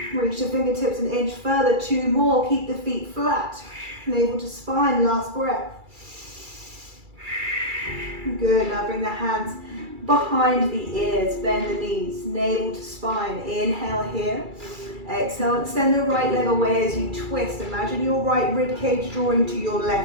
Reach the fingertips an inch further, 2 more. Keep the feet flat. Navel to spine, last breath. Good, now bring the hands behind the ears, bend the knees, navel to spine. Inhale here. Exhale, extend the right leg away as you twist. Imagine your right rib cage drawing to your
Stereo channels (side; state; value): left; late; 2.3 ms